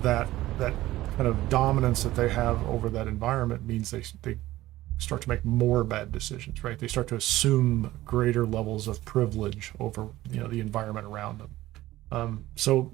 kind of dominance that they have over that environment means they start to make more bad decisions, right? They start to assume greater levels of privilege over the environment around them. So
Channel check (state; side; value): quieter; left; 16.2 dB